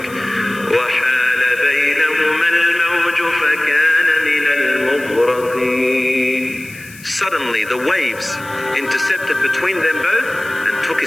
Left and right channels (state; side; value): noise; left; hiss, 20 dB below the sound